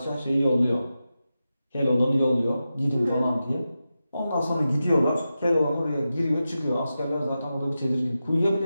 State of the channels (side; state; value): both; inverted; correlation -0.92